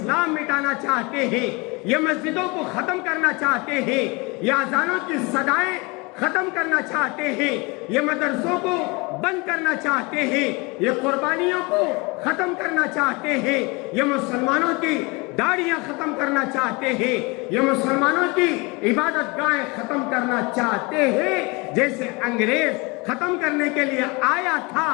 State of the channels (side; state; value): right; quieter; 26.9 dB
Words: مٹانا چاہتے ہیں، یہ مسجدوں کو ختم کرنا چاہتے ہیں، یہ اذانوں کی صدائیں ختم کرنا چاہتے ہیں، یہ مدرسوں کو بند کرنا چاہتے ہیں، یہ قربانیوں کو ختم کرنا چاہتے ہیں، یہ مسلمانوں کی داڑیاں ختم کرنا چاہتے ہیں، یہ مسلمانوں کی عبادت گاہیں ختم کرنا چاہتے ہیں، جیسے انگریز ختم کرنے کے لیے آیا تھا،